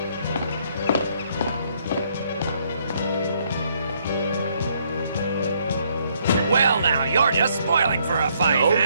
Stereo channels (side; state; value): both; inverted; correlation -0.69